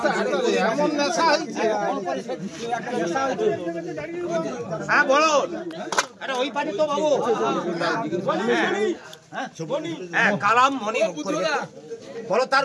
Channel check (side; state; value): both; identical; correlation 1.00